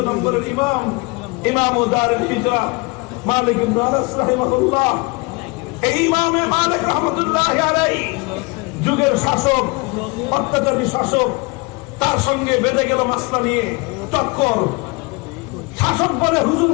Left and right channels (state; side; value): quieter; right; 27.5 dB